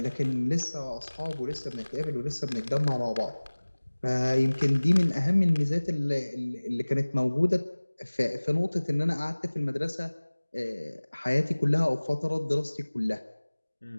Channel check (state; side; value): inverted; both; correlation -1.00